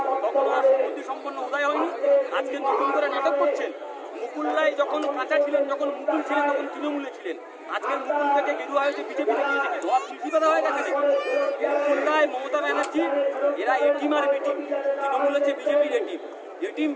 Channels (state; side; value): identical; both; correlation 1.00